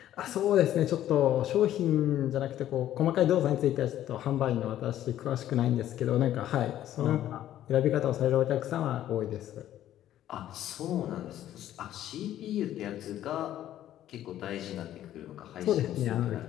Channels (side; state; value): right; quieter; 12.3 dB